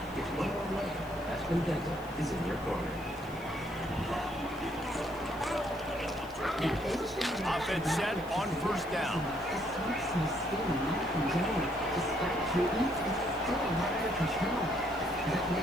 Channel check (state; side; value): noise; left; hiss, 23 dB below the sound